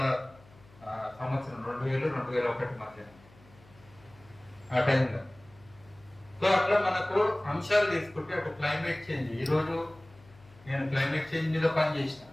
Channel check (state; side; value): noise; left; hum, 26 dB below the sound